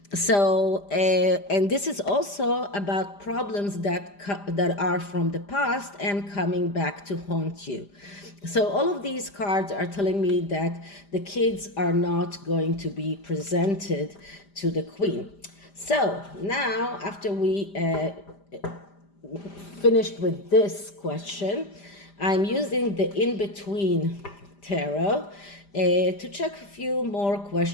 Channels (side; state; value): right; late; 5.0 ms